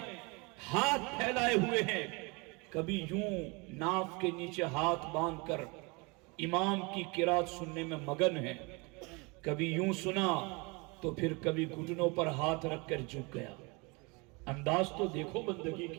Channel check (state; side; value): quieter; left; 28.4 dB